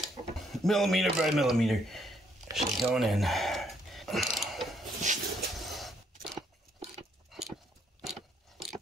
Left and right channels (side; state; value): both; normal; correlation 0.70